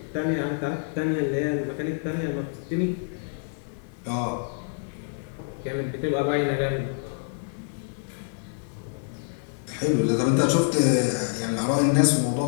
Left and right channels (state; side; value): silent; right; digital silence